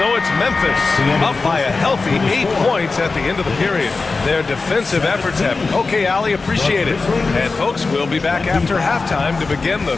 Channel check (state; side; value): quieter; right; 4.0 dB